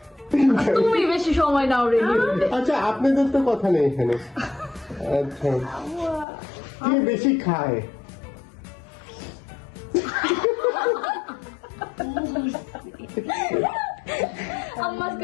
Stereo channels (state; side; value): drops out; right; at 6.2 s